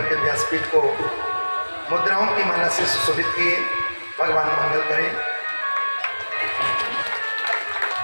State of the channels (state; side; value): inverted; both; correlation -1.00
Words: के व्यासपीठ को मुद्राओं की माला से सुशोभित किए। भगवान मंगल करें।